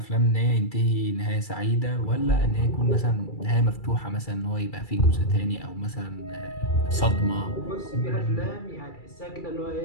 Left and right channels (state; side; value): late; right; 2.3 ms